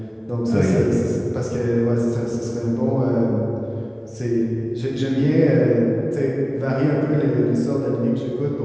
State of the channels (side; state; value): both; identical; correlation 1.00